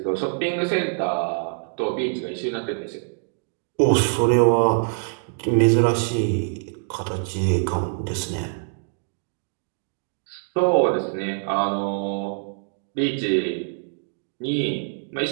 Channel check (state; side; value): silent; left; digital silence